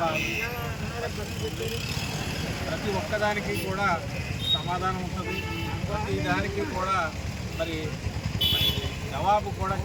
ప్రతి ఒక్కదానికి కూడా సమాధానం ఉంటుంది. ప్రతి దానికి కూడా మరి జవాబు కూడా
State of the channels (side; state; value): both; identical; correlation 1.00